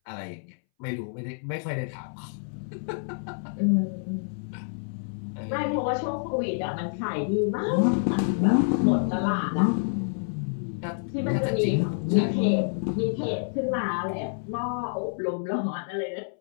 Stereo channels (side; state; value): right; silent; 60 dB below the other